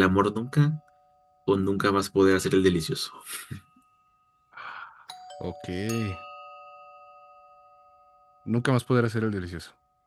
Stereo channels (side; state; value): both; identical; correlation 1.00